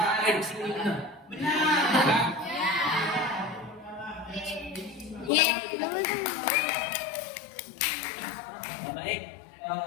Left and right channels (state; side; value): drops out; right; at 5.3 s